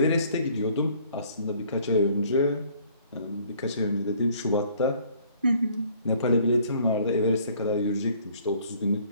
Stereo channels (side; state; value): both; inverted; correlation -0.58